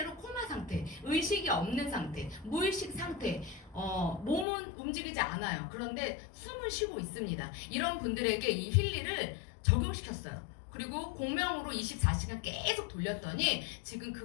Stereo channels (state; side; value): drops out; right; at 4.5 s